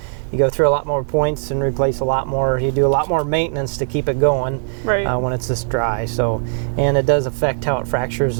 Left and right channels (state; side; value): silent; left; digital silence